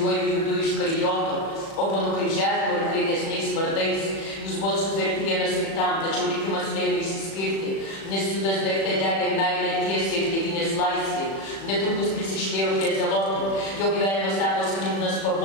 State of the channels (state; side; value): late; right; 36 ms